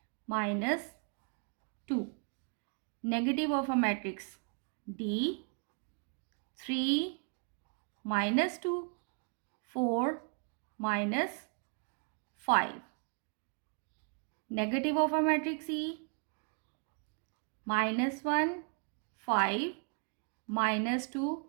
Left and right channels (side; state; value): left; quieter; 39.3 dB